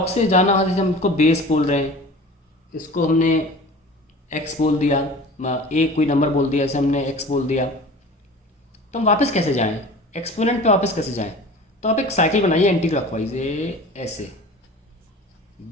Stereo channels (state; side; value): normal; both; correlation 0.40